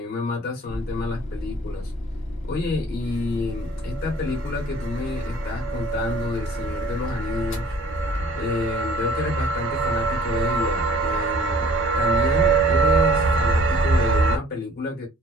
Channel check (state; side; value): normal; both; correlation 0.53